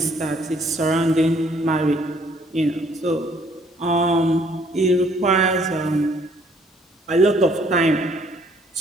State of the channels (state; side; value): normal; both; correlation 0.63